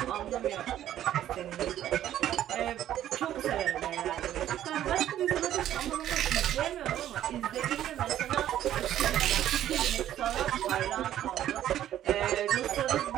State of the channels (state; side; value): quieter; left; 11.8 dB